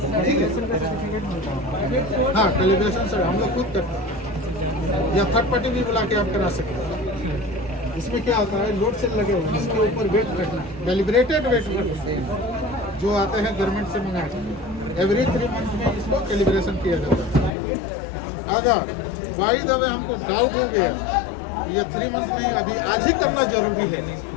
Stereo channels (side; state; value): right; drops out; at 17.5 s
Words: ठीक है, हाँ कैलिब्रेशन से हम लोग खुद करते हैं या थर्ड पार्टी भी बुला के आप करा सकते हैं। इसमें क्या होता है, लोड सेल लगे हुए हैं, इसके ऊपर वेट रखना, कैलिब्रेटेड वेट रखते हैं जो आते हैं गवर्नमेंट से मंगा के, एवरी 3 मंथ में इसको कैलिब्रेशन किया जाता है। अगर बाई द वे हमको डाउट हो गया ये 3 मंथ में अभी आज ही करना जरूरी है,